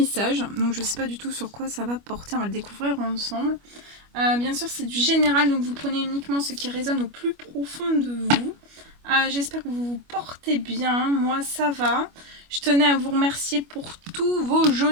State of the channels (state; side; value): late; left; 25 ms